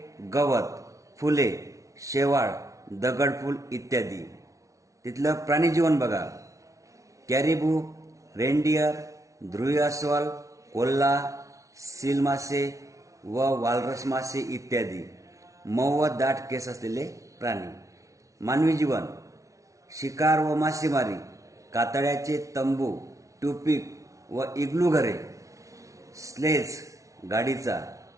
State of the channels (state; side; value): late; left; 0.15 ms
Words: गवत, फुले, शेवाळ, दगडफूल इत्यादी. तिथलं प्राणीजीवन बघा. कॅरिबू, रेनडियर, ध्रुवी अस्वल, कोल्हा, सील मासे व वालरस मासे इत्यादी. मऊ व दाट केस असलेले प्राणी. मानवी जीवन. शिकार व मासेमारी, कातळ्याचे तंबू, ट्यूपिक व इग्लू घरे, स्लेज गाडीचा